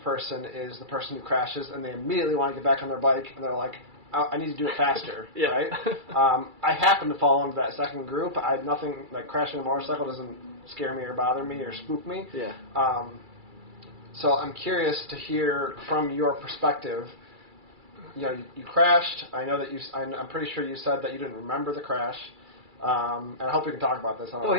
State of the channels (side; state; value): left; late; 2.3 ms